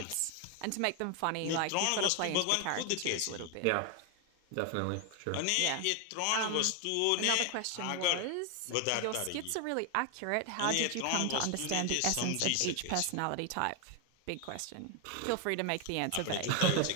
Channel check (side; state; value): both; different; correlation 0.00